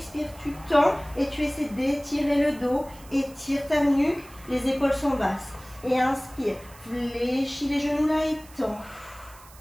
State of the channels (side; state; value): right; noise; hiss, 22 dB below the sound